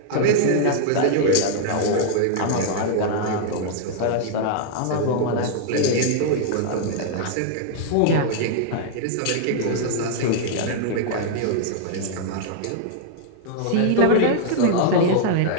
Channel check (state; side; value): different; both; correlation -0.01